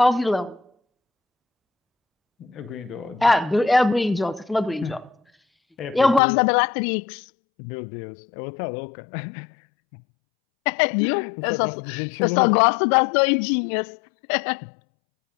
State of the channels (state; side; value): drops out; right; at 6.2 s